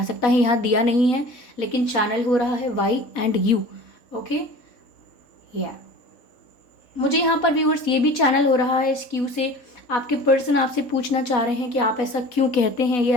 सकता है। यहाँ दिया नहीं है लेकिन चैनल हो रहा है वाई एंड यू। ओके, या मुझे यहाँ पर व्यूअर्स ये भी चैनल हो रहा है इस क्यू से। आपके पर्सन आपसे पूछना चाह रहे हैं कि आप ऐसा क्यों कहते हैं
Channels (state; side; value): late; right; 3.7 ms